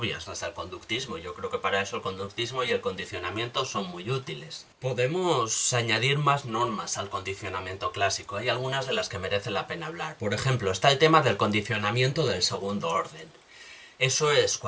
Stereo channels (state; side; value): identical; both; correlation 1.00